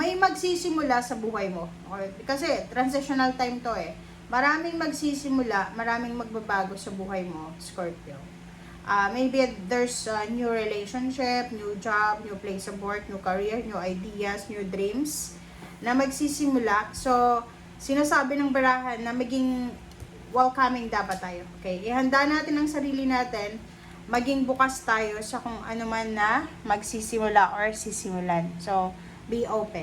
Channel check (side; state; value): both; identical; correlation 1.00